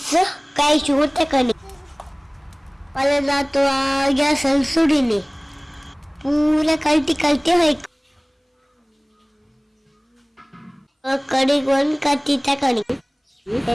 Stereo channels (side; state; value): both; identical; correlation 1.00